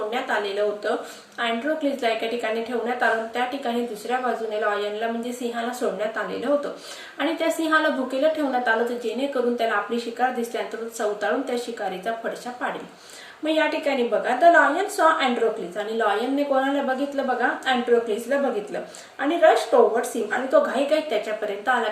आलेलं होतं. अँड्रोक्लिसला एका ठिकाणी ठेवण्यात आलं. त्या ठिकाणी दुसऱ्या बाजूने लॉयनला म्हणजे सिंहाला सोडण्यात आलेलं होतं आणि त्या सिंहाला भुकेला ठेवण्यात आलं तर जेणेकरून त्याला आपली शिकार दिसल्यानंतर चवताळून त्या शिकारीचा फडशा पाडेल. मग या ठिकाणी बघा, द लॉयन सॉ अँड्रोक्लिस आणि लॉयनने कोणाला बघितलं बघा, अँड्रोक्लिसला बघितलं आणि रश टुवर्ड्स हिम आणि तो घाईघाईत त्याच्यापर्यंत आला.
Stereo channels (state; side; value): identical; both; correlation 1.00